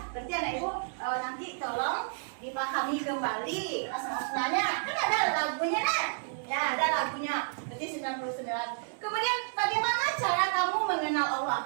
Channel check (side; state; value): left; silent; 57 dB below the other